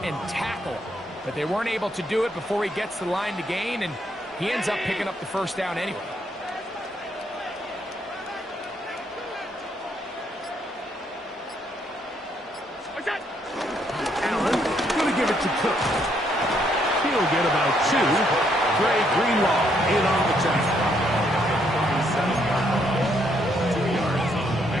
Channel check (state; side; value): normal; both; correlation 0.72